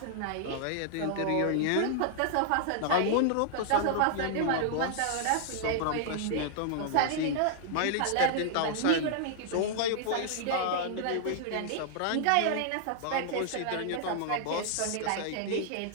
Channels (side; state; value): both; different; correlation -0.01